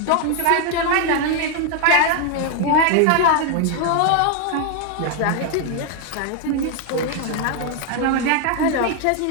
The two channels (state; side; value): different; both; correlation 0.00